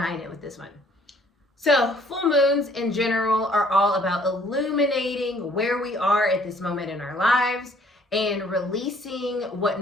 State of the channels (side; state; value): both; normal; correlation 0.60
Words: it with this one. So full moons in general are all about illuminating where we are at this moment in our lives and releasing what